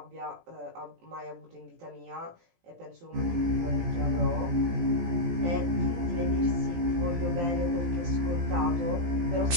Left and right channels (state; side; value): late; left; 17 ms